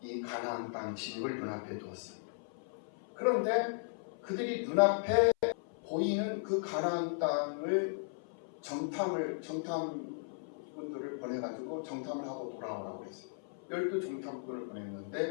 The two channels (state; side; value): silent; right; 54 dB below the other